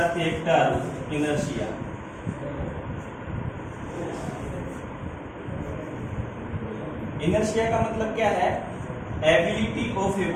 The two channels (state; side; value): identical; both; correlation 1.00